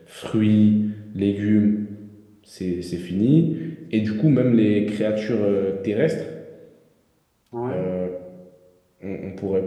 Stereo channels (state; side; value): identical; both; correlation 1.00